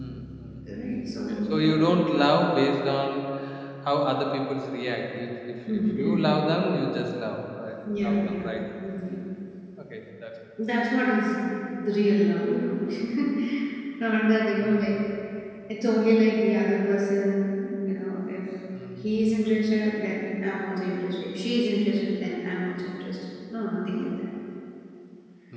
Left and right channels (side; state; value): both; identical; correlation 1.00